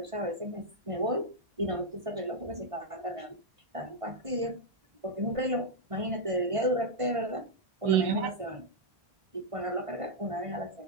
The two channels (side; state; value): left; late; 1.5 ms